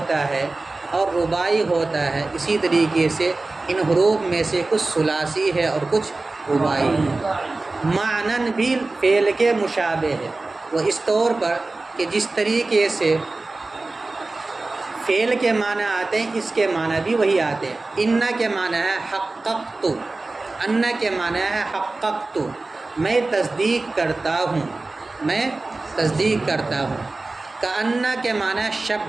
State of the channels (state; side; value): quieter; left; 3.3 dB